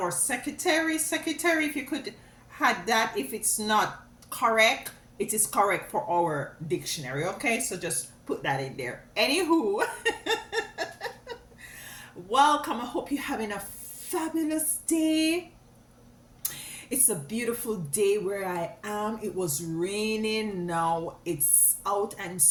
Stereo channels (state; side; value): identical; both; correlation 1.00